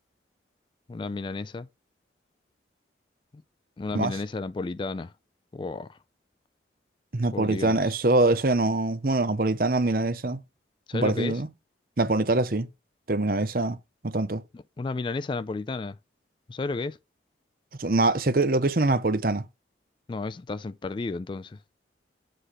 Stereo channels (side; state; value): both; normal; correlation 0.28